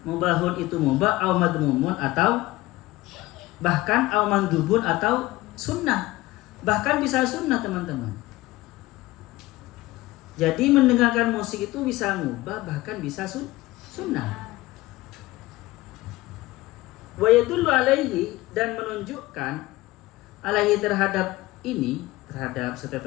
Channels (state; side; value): quieter; right; 18.8 dB